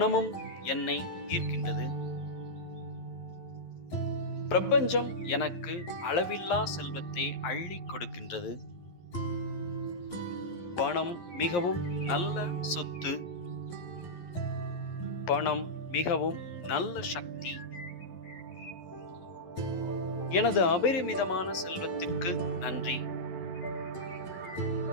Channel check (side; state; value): right; late; 11 ms